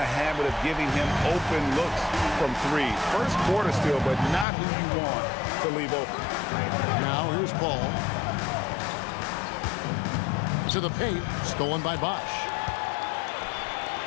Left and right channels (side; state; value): right; drops out; at 4.5 s